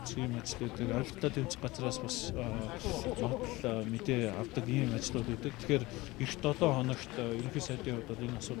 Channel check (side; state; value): right; quieter; 20.5 dB